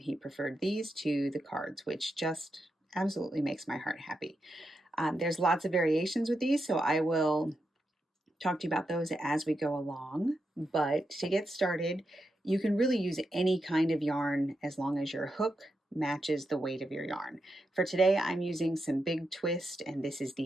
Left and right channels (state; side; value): normal; both; correlation 0.86